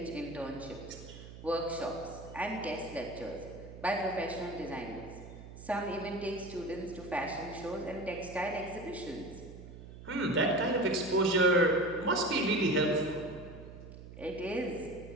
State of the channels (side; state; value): right; noise; hum, 14 dB below the sound